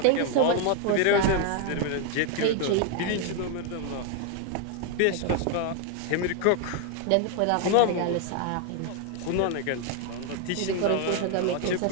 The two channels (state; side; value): different; both; correlation 0.00